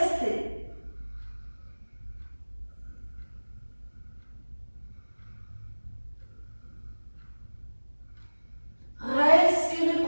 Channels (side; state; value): both; inverted; correlation -1.00